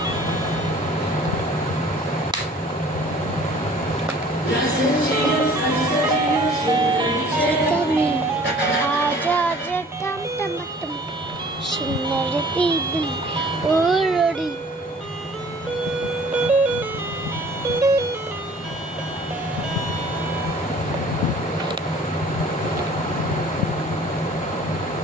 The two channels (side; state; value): both; normal; correlation 0.51